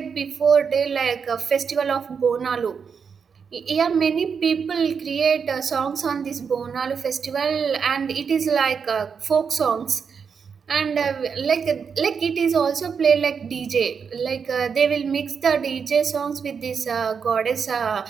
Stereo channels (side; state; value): left; quieter; 6.2 dB